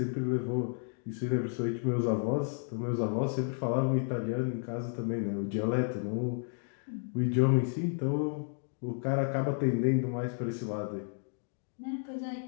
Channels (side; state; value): right; silent; 56 dB below the other